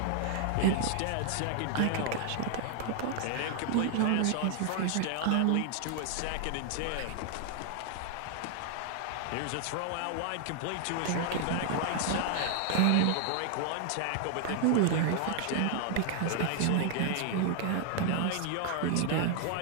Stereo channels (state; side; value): different; both; correlation 0.00